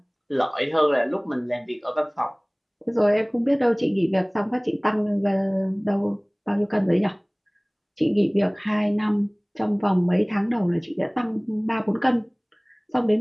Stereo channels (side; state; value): both; identical; correlation 1.00